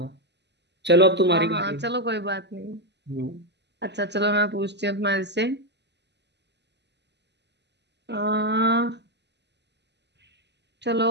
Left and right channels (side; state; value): left; late; 0.50 ms